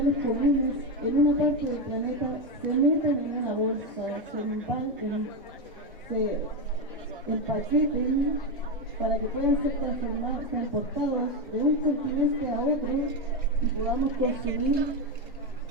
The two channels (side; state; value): both; normal; correlation 0.10